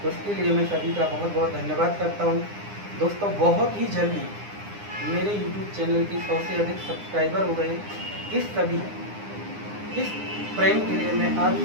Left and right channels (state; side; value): late; left; 9.8 ms